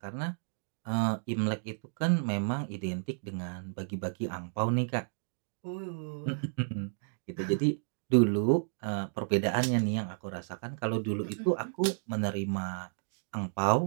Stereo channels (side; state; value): left; silent; digital silence